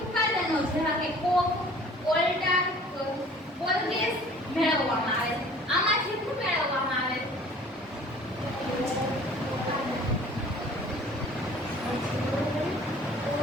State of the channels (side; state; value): both; normal; correlation 0.50